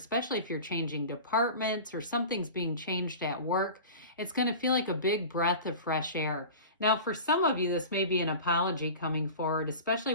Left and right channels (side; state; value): both; inverted; correlation -0.35